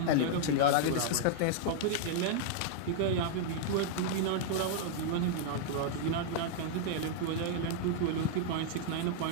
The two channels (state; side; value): different; both; correlation -0.01